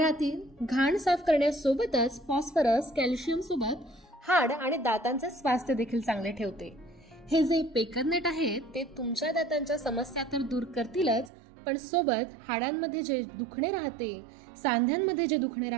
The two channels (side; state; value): left; drops out; at 11.3 s